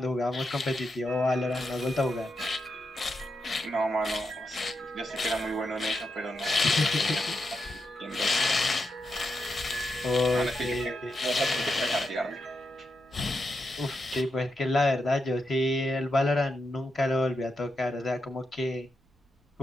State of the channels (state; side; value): normal; both; correlation 0.85